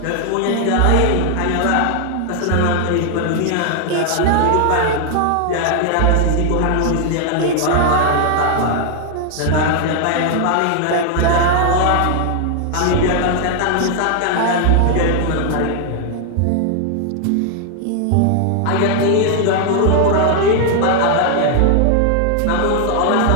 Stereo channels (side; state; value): both; different; correlation 0.00